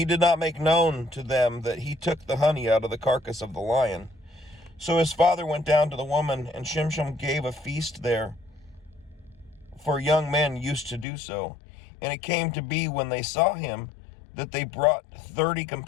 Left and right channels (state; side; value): drops out; right; at 11.1 s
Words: did not make known to them that he took the honey out of the carcass of the lion. So his father went down to the woman, and Shimshon gave a feast there, for young men used to do so. And it came to be, when they saw him, that they brought 30